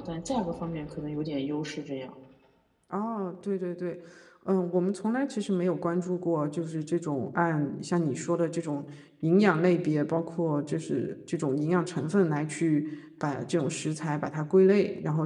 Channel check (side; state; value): both; identical; correlation 1.00